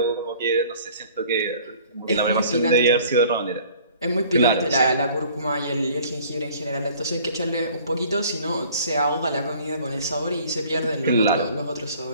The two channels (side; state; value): both; inverted; correlation -0.52